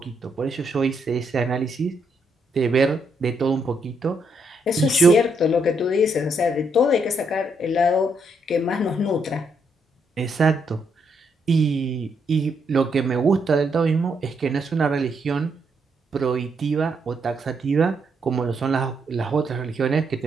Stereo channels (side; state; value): both; normal; correlation 0.76